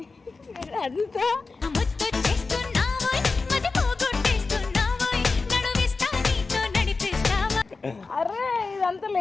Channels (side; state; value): right; quieter; 4.1 dB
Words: అంతా అరే ఇదంతా